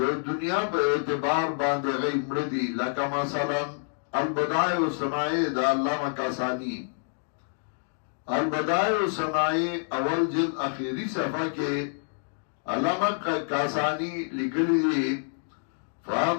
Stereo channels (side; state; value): right; silent; digital silence